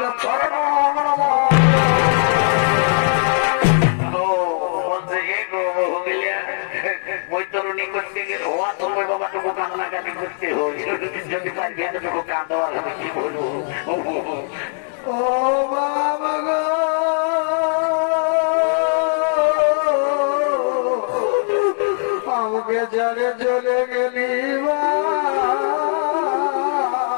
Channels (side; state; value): right; silent; 66 dB below the other